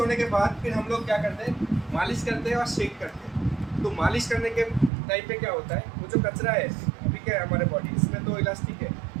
के बाद फिर हम लोग क्या करते हैं? मालिश करते हैं और शेक करते हैं। तो मालिश करने के टाइम पे क्या होता है, वो जो कचरा है, अभी क्या है हमारे बॉडी, इसमें तो इलास्टिक है,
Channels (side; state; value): left; drops out; at 4.9 s